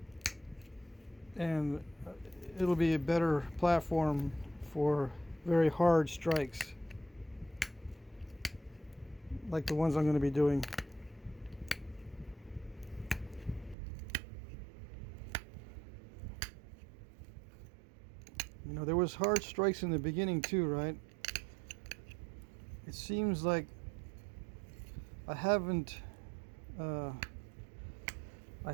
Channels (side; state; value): left; drops out; at 13.8 s